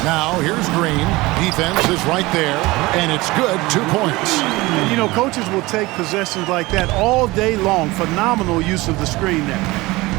Now, here's Green. Defense is right there, and it's good. 2 points. You know, coaches will take possessions like that all day long. Phenomenal use of the screen there.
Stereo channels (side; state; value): left; quieter; 21.1 dB